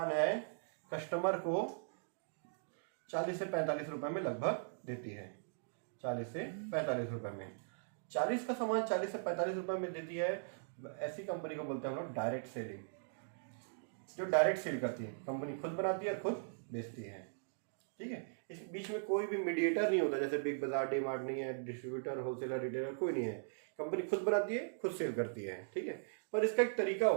है कस्टमर को 40 से 45 रुपये में लगभग देती है, 40 से 45 रुपये में। 40 का सामान 40 से 45 रुपये में देती है, ऐसी कंपनी को बोलते हैं हम लोग डायरेक्ट सेलिंग, जो डायरेक्ट सेल करती है, कंपनी खुद बनाती है और खुद बेचती है, ठीक है। इस बीच में कोई भी मीडिएटर नहीं होता, जैसे बिग बाजार, डी मार्ट नहीं है, डिस्ट्रीब्यूटर, होलसेलर, रिटेलर कोई नहीं है, कंपनी खुद बनाती है, खुद सेल करती है, ठीक है। पर इसका एक तरीका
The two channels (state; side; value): silent; left; digital silence